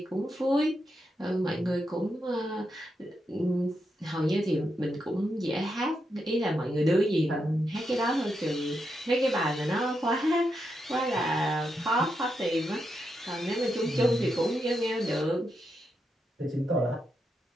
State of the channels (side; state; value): both; normal; correlation 0.84